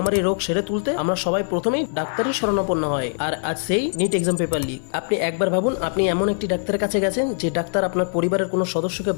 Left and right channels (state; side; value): silent; right; 64 dB below the other